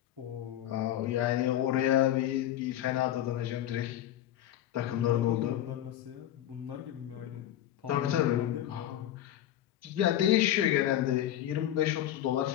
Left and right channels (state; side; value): quieter; right; 12.1 dB